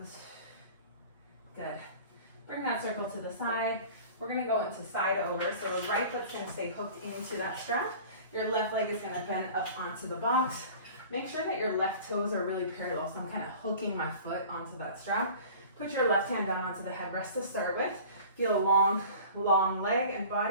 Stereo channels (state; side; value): inverted; both; correlation -0.43